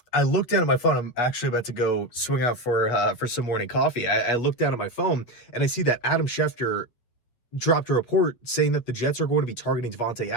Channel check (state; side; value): late; right; 8.4 ms